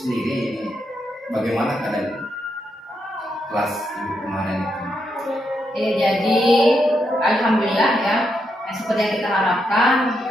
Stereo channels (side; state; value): both; normal; correlation 0.81